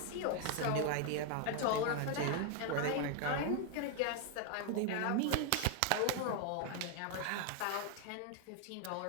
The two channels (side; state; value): both; different; correlation 0.00